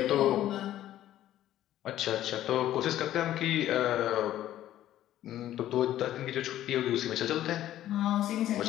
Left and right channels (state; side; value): quieter; right; 12.9 dB